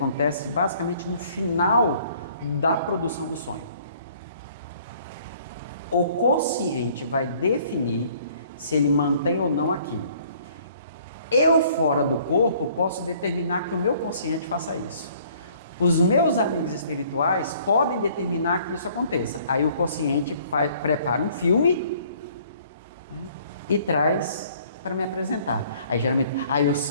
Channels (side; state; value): both; inverted; correlation -0.58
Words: basicamente no final da produção do sonho. O consciente vai definir se ele mantém ou não aquilo. Eu, fora do corpo, posso determinar que o meu consciente faça isso. Os meus amigos espirituais podem determinar que isso aconteça. Aí o consciente prepara um filme, né, e traz para me apresentar. Aí geralmente, eu